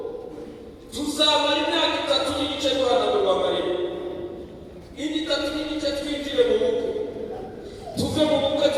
tuzamara imyaka 3 n'igice duhanagurwa amarira, 3 n'igice twinjire mu bukwe, tuve mu bukwe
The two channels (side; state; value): both; identical; correlation 1.00